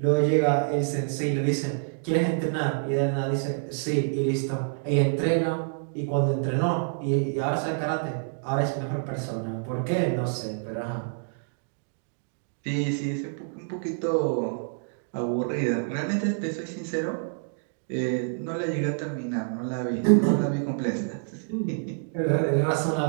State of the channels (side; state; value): left; silent; digital silence